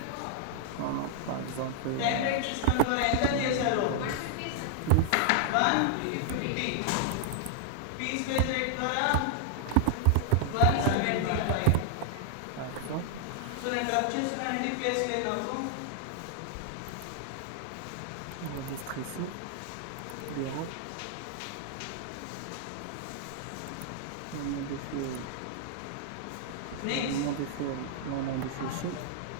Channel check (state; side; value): different; both; correlation -0.01